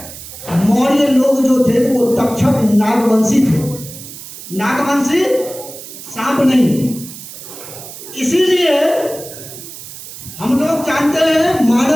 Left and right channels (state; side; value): noise; right; hiss, 14 dB below the sound